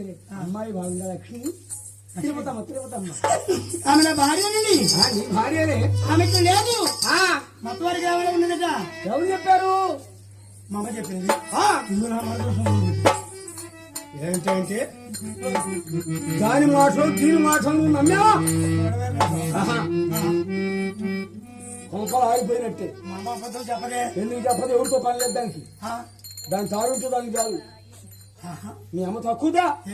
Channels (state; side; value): identical; both; correlation 1.00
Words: అమ్మాయి బాగుందా లక్ష్మి? తిరుపతమ్మ తిరుపతమ్మ ఆమె నా భార్యనండి. నీ భార్యనే. ఆమెకు లేదు, ఆ, మొత్తం వారికి ఏమైనా ఉన్నదట. ఎవరు చెప్పారు? మా అమ్మ చెప్పింది. ఆ, ఇందులో నా మనసు ఉంది. ఏంటంటే దాని మాటలు దీని మాటలు నువ్వు నమ్మావా? ఆహా. కొంపలు ఆగిపోయినట్టే. మా అమ్మ అబద్ధం చెప్పదే. ఎందుకు చెప్పదు? ఎవరితో పని లేదు దానికి. ఆ, దాని తారుంటే దానికి చాలు. ఆహా. మీ అమ్మ తక్కువదా?